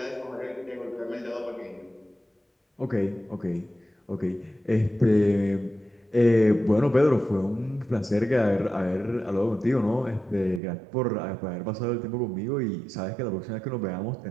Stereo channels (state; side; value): drops out; left; at 10.6 s